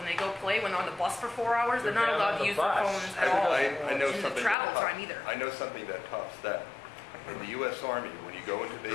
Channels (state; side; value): drops out; right; at 4.5 s